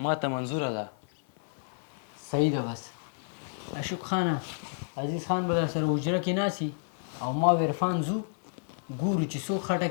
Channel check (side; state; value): right; silent; 58 dB below the other